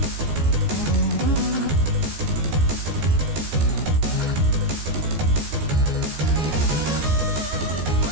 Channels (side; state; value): left; late; 15 ms